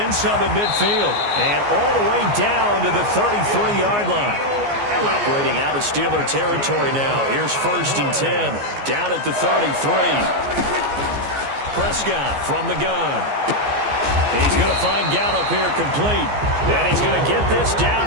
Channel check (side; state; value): left; late; 14 ms